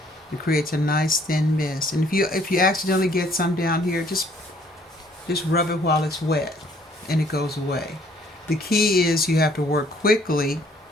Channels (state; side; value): normal; both; correlation 0.61